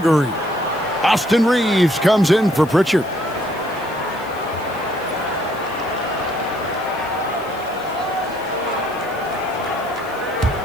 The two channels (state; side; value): noise; left; hiss, 22 dB below the sound